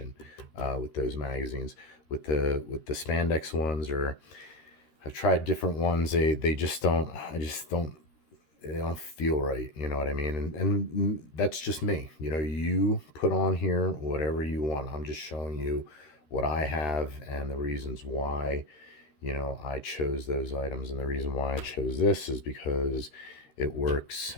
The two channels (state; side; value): late; right; 13 ms